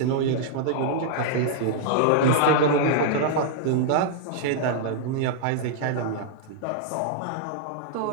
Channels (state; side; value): different; both; correlation -0.01